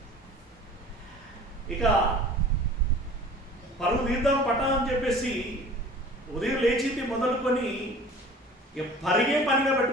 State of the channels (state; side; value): normal; both; correlation 0.45